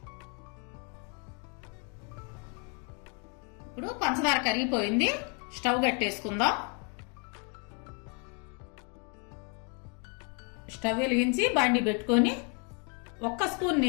ఇప్పుడు పంచదార కరిగిపోయింది. స్టవ్ కట్టేసుకుందాం. స్టవ్ వెలిగించి బండి పెట్టుకొని 1 స్పూన్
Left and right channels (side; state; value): right; quieter; 37.0 dB